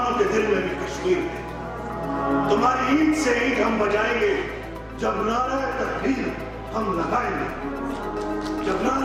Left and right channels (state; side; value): identical; both; correlation 1.00